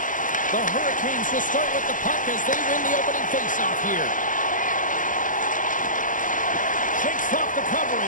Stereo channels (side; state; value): right; late; 0.38 ms